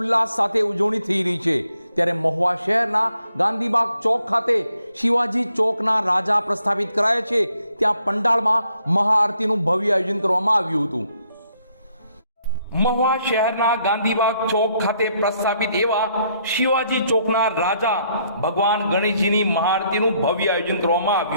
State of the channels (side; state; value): both; inverted; correlation -0.71